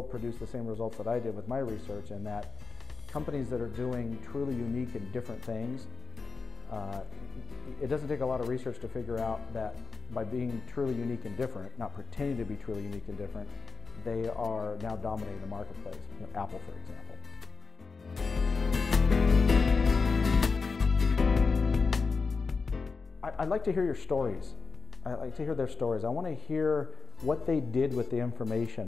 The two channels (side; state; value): right; quieter; 4.7 dB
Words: produced the same results that I did with my research, in that companies that are doing truly unique and different things It doesn't take a lot of research to figure out that by being truly unique and different, not pretending to be truly unique and different, they are now dominating the marketplace. You know, Apple, for example. I'd like to hear your stories. I'd like to hear their stories. I want to hear what they did with the